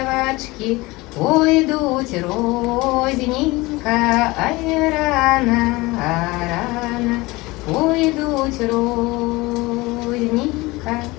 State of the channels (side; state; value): right; quieter; 21.9 dB